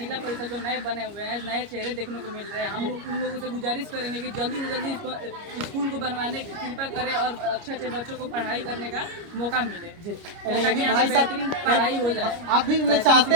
परिषद जो नए बने हुए हैं, नए चेहरे देखने को मिल रहे हैं। हम लोग उन लोगों से गुजारिश करेंगे कि जल्दी से जल्दी स्कूल को बनवाने की कृपा करें और अच्छे अच्छे बच्चों को पढ़ाई करने का मौका मिले, जी, ताकि यहाँ पे बेहतरीन पढ़ाई हो जाए। आप भी चाहते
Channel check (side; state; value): left; late; 29 ms